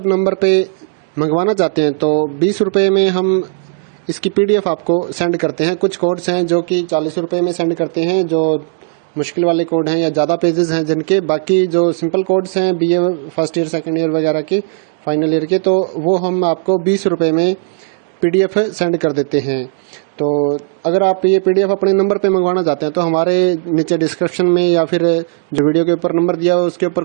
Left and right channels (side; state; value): left; silent; digital silence